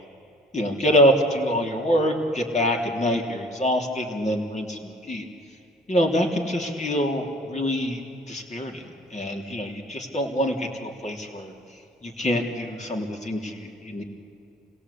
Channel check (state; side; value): normal; both; correlation 0.51